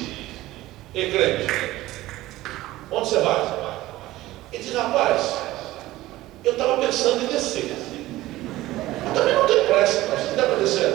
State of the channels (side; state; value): left; quieter; 16.9 dB